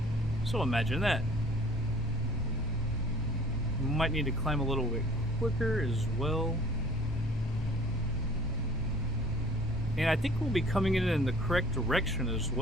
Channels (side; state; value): both; normal; correlation 0.52